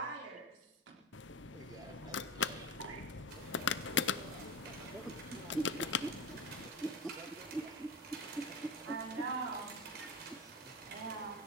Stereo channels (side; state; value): both; normal; correlation 0.23